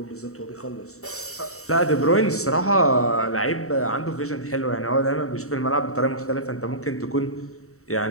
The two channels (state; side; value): late; right; 0.64 ms